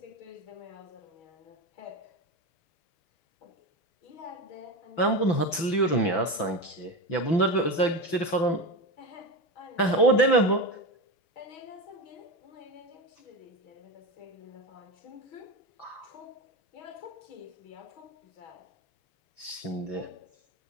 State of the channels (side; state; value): right; late; 5.9 ms